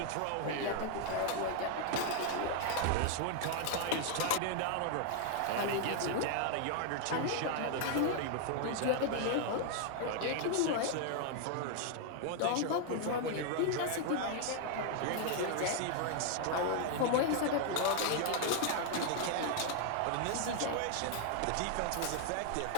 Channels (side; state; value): both; different; correlation 0.00